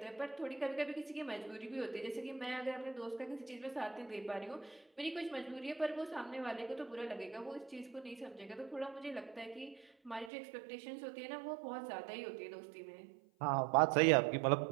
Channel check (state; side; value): drops out; left; at 10.3 s